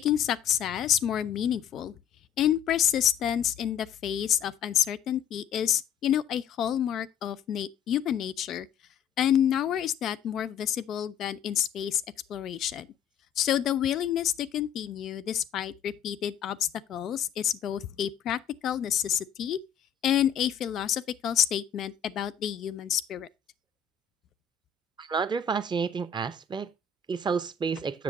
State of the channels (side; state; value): right; quieter; 7.7 dB